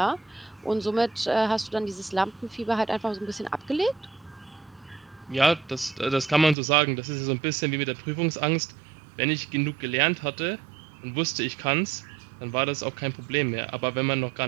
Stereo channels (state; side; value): drops out; left; at 6.6 s